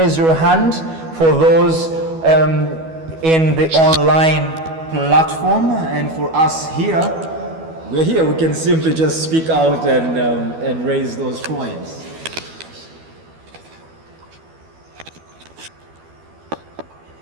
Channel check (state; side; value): late; left; 12 ms